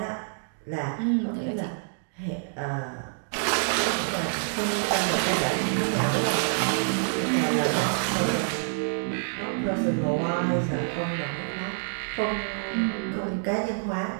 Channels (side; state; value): left; silent; digital silence